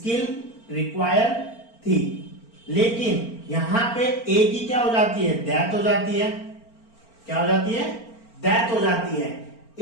रिक्वायर थी, लेकिन यहां पे ए की क्या हो जाती है? डेथ हो जाती है। क्या हो जाती है? डेथ हो जाती है।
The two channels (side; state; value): right; late; 4.4 ms